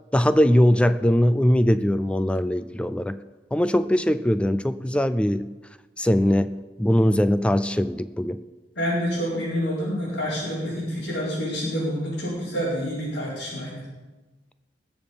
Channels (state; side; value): normal; both; correlation 0.91